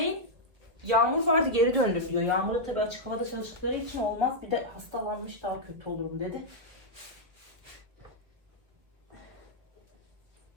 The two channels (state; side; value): late; left; 1.7 ms